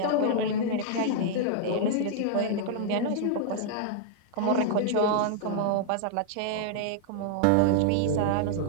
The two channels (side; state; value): both; different; correlation -0.01